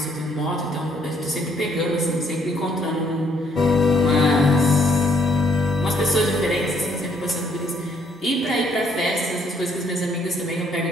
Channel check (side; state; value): both; normal; correlation 0.67